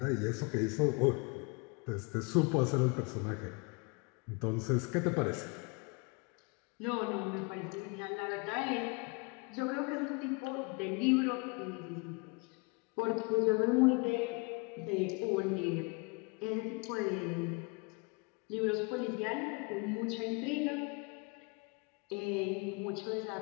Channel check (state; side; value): quieter; right; 31.0 dB